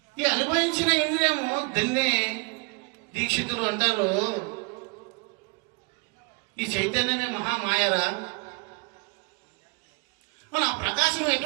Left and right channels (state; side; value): quieter; left; 31.6 dB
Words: ఈ అనుభవించిన ఇంద్రియము దాన్ని దీక్షితులు అంటారు, ఈ చైతన్యమే మహామాయరా. మన ప్రకాశం